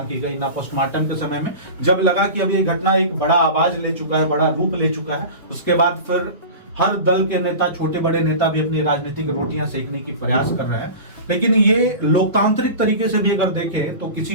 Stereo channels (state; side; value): inverted; both; correlation -0.33